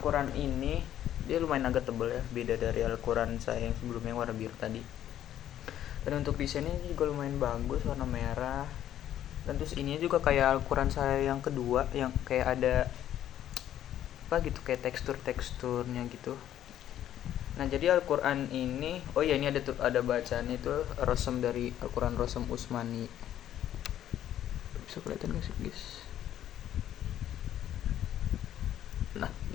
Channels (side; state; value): right; quieter; 11.4 dB